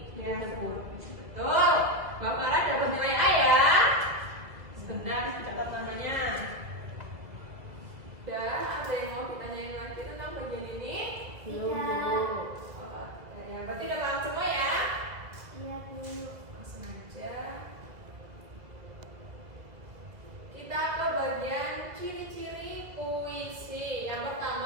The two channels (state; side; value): late; left; 2.0 ms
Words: Ya, Gitu, Bu. betul. Mbak Farah dapat nilai A ya. Sebentar, dapat namanya. Udah, ada yang mau ditanyain lagi tentang bagian ini? Belum, Tidak. Bu. Oh, ya, berarti udah paham semua ya? Iya, Bu. Langsung aja. Kita ke bagian ciri-ciri puisi. Yang